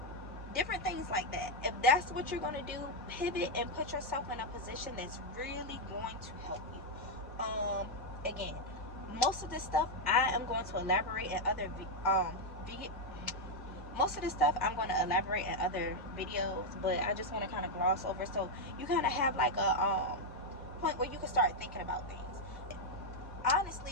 different things like that. If that's what you're going to do, pivot and put yourself in a position that's really going to help you. Again, most of this stuff I am going to elaborate in other most of this stuff I'm going to elaborate in other videos, but I just want to kind of gloss over so you kind of have like a point where you can start thinking about things.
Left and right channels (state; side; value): normal; both; correlation 0.01